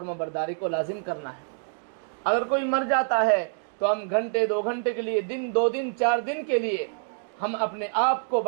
برداری کو لازم کرنا ہے۔ اگر کوئی مر جاتا ہے تو ہم گھنٹے 2 گھنٹے کے لیے، دن 2 دن 4 دن کے لیے ہم اپنے آپ کو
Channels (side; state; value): left; silent; digital silence